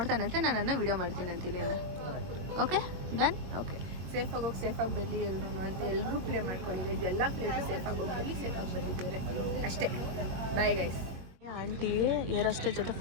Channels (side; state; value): left; late; 22 ms